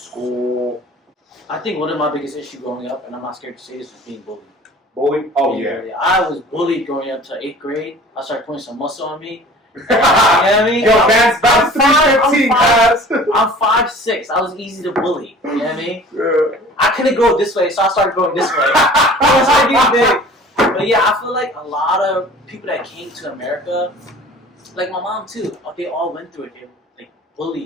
I think one of my biggest issues growing up, and I'm not scared to say this, was being bullied. Bullied? Oh yeah. I was bullied growing up to 8th grade. I started putting some muscle on me. You know what I mean? Yo, man's about 315, guys. I'm 5'6". I was easy to bully. You know what I mean? Yeah. I couldn't go this way, so I started going this way. I started getting big. But yeah, I feel like a lot of people that came to America, like my mom too, they all went through it. They like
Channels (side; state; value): both; normal; correlation 0.46